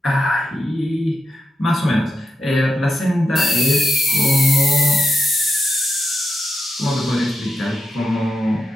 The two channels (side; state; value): both; normal; correlation 0.85